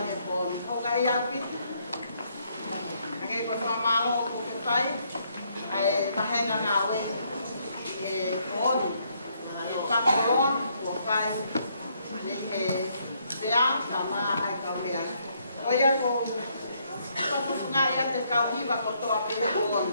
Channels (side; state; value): both; inverted; correlation -0.71